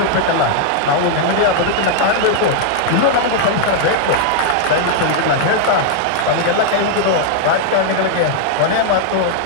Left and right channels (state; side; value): different; both; correlation -0.01